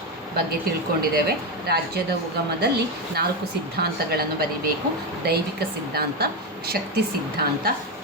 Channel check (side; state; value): both; normal; correlation 0.11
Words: ಬಗ್ಗೆ ತಿಳ್ಕೊಂಡಿದ್ದೇವೆ. ರಾಜ್ಯದ ಉಗಮದಲ್ಲಿ 4 ಸಿದ್ಧಾಂತಗಳನ್ನು ಬರೀಬೇಕು. ದೈವಿಕ ಸಿದ್ಧಾಂತ, ಶಕ್ತಿ ಸಿದ್ಧಾಂತ,